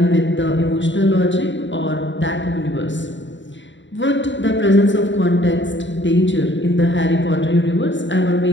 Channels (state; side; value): late; right; 0.54 ms